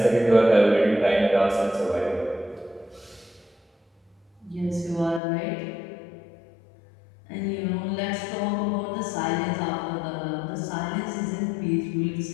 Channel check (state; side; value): drops out; right; at 5.2 s